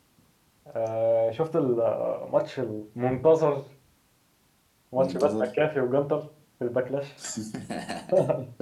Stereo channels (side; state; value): both; identical; correlation 1.00